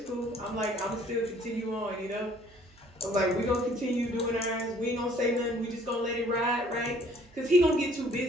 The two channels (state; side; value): noise; right; hum, 27 dB below the sound